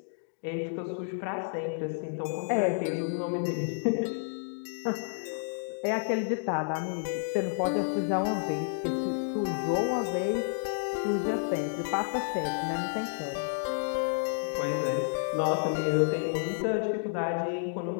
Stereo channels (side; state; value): right; silent; digital silence